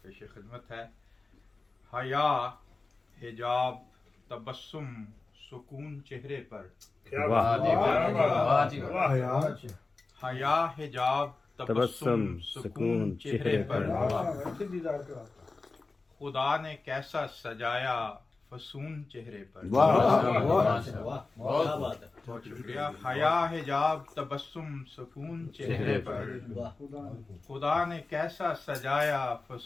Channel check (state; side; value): quieter; right; 3.7 dB